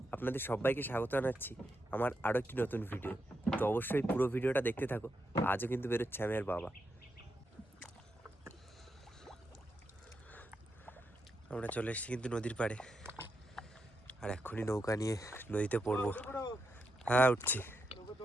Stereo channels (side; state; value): both; normal; correlation 0.84